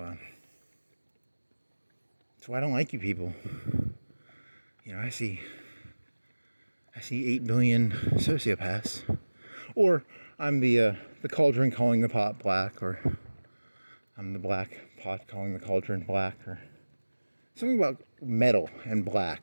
that's why I don't like you people. You know, I see 8 billion sociopaths. Or I'm the cauldron calling the pot black, or I'm the black pot calling the cauldron black, or something about metal and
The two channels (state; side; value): inverted; both; correlation -1.00